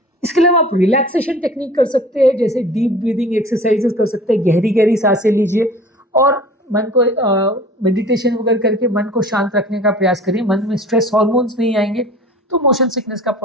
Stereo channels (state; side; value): normal; both; correlation 0.44